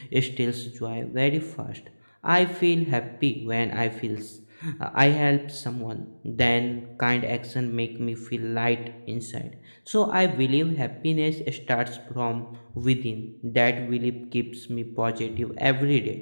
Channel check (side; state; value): both; inverted; correlation -1.00